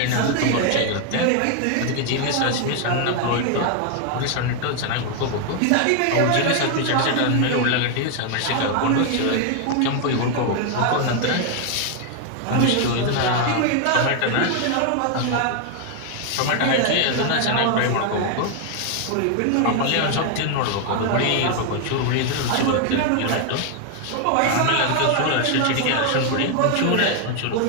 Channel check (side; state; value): both; different; correlation 0.00